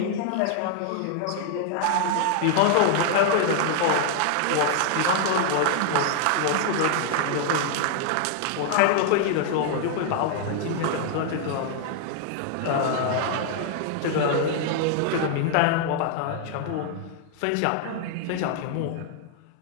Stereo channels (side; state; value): both; different; correlation 0.00